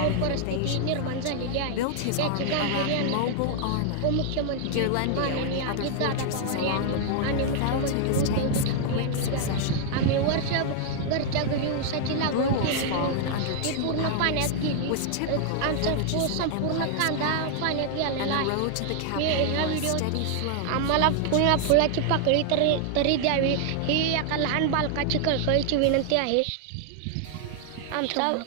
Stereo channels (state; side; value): different; both; correlation 0.00